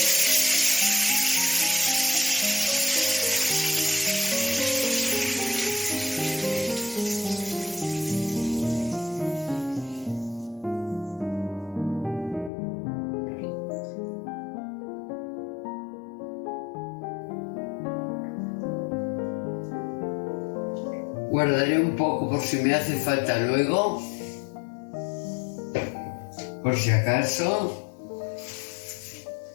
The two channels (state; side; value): drops out; right; at 12.5 s